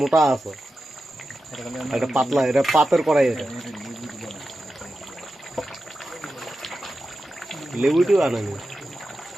মোটা আছে, এটা পাতলা, এটা পাতের কড়াই, এটা লেবুটিও আনেনি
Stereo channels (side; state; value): both; normal; correlation 0.91